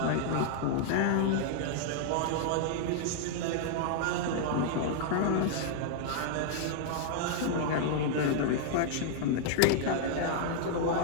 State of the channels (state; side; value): different; both; correlation -0.01